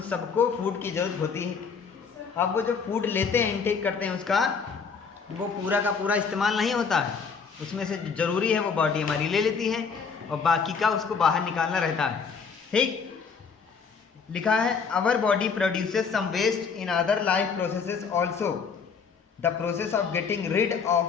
सबको फूड की जरूरत होती है। अब वो जो फूड लेते हैं, इनटेक करते हैं, उसका वो पूरा का पूरा इस्तेमाल नहीं होता है, उसमें से ज़रूरी है वो बॉडी हमारी ले लेती है और बाकी का उसको बाहर निकालना रहता है। ठीक, लिखा है our body produces some waste in other life processes also, the process of getting rid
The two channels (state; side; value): quieter; right; 5.7 dB